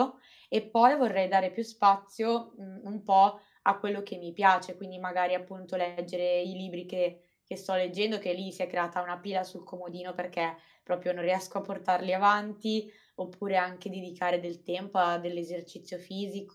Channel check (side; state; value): both; identical; correlation 1.00